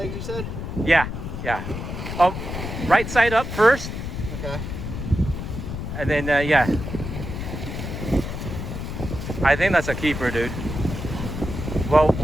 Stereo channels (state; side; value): noise; left; rumble, 6 dB below the sound